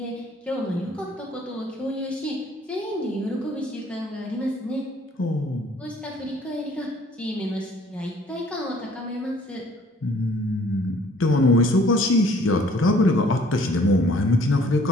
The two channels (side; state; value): both; normal; correlation 0.57